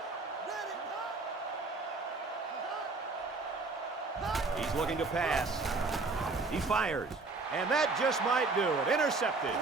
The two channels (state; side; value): quieter; left; 3.8 dB